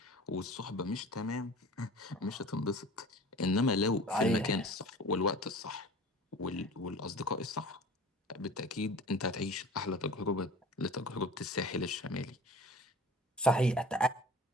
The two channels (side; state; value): both; normal; correlation 0.42